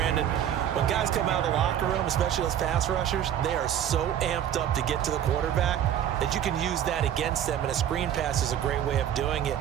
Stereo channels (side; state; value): left; quieter; 10.2 dB